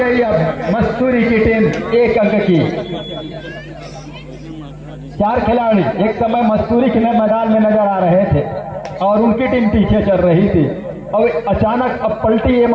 अब मस्तूरी की टीम 1 अंक की। 4 खिलाड़ी एक समय मस्तूरी के मैदान में नजर आ रहे थे और उनकी टीम पीछे चल रही थी। अब अचानक अब पलटी ये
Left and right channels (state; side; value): identical; both; correlation 1.00